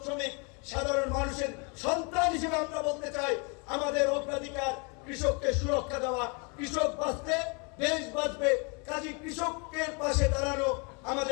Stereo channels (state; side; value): quieter; right; 33.3 dB